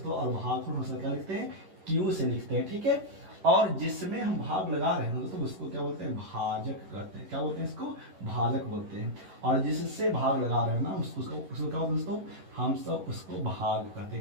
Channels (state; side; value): late; left; 11 ms